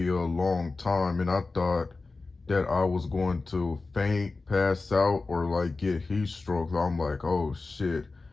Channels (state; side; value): quieter; right; 3.7 dB